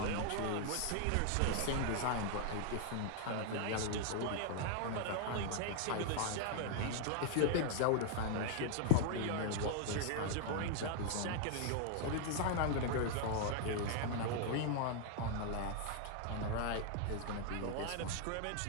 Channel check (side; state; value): both; different; correlation 0.00